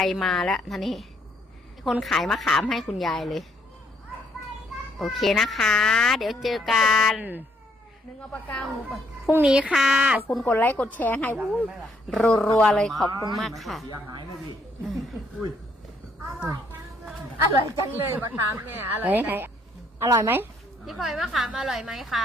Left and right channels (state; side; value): normal; both; correlation 0.69